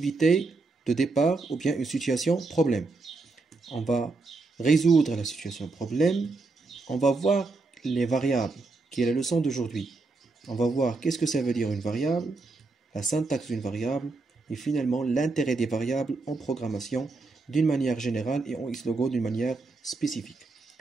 de départ ou bien une situation problème. On va résoudre la situation problème. On va voir les variables, qui est la leçon d'aujourd'hui. On va voir qu'est-ce que ça veut dire une variable, la syntaxe d'une variable, et finalement l'intérêt des variables en programmation d'une manière générale et en Xlogo d'une manière spécifique.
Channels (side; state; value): left; quieter; 3.7 dB